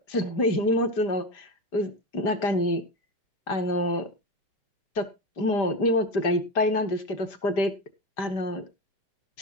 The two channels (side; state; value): right; late; 5.0 ms